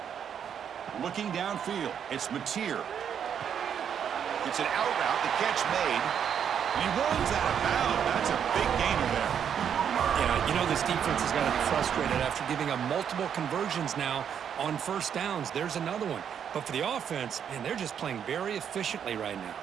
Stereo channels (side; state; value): left; quieter; 8.3 dB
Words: Looking downfield, it's Mateer. It's an out route, the catch made, and he runs out of bounds. That's a big gainer there. Yeah, you know this defense has got to be frustrated after giving up multiple conversions now on 1st downs. There's another one. But for the offense, man, they're just playing very efficiently right now.